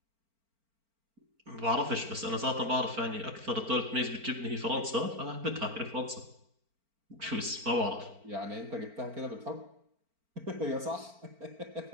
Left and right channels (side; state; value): left; late; 4.4 ms